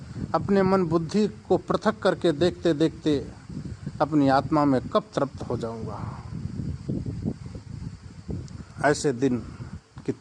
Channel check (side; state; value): both; identical; correlation 1.00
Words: अपने मन बुद्धि को पृथक करके देखते देखते अपनी आत्मा में कब तृप्त हो जाऊंगा? ऐसे दिन की